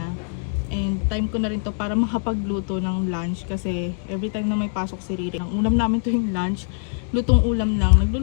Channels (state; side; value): silent; right; digital silence